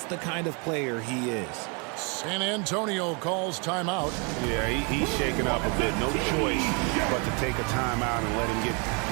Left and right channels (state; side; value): quieter; left; 33.9 dB